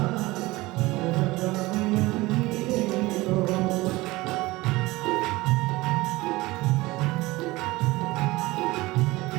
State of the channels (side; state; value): left; quieter; 20.5 dB